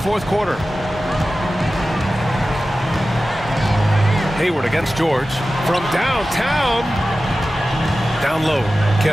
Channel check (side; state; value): both; normal; correlation 0.95